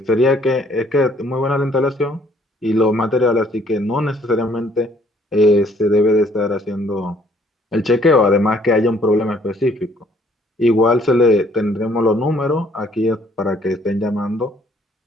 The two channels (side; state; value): both; normal; correlation 0.63